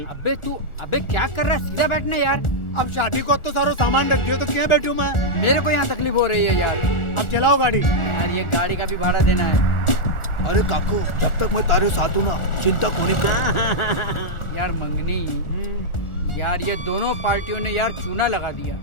अबे क्या कर रहा है, सीधा बैठना यार। अब शादी को तो सारा सामान रख दियो तो क्या बैठूं मैं? मेरे को यहाँ तकलीफ हो रही है यार। अब चलाओ गाड़ी। यार ये गाड़ी का भी भाड़ा देना है। अरे काको जब तक मैं तारे साथ हूँ ना, चिंता कोनी कर। यार मंगनी, यार ये दोनों पार्टियों ने यार चूना लगा दिया।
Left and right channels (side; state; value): right; late; 1.4 ms